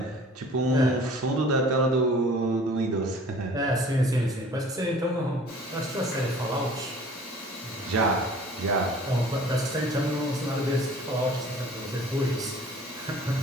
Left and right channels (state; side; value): normal; both; correlation 0.48